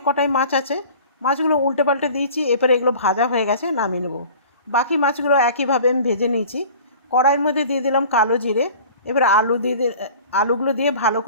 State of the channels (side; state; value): both; inverted; correlation -0.44